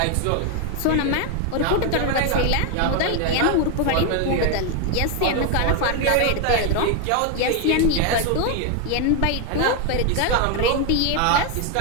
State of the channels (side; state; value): both; different; correlation 0.01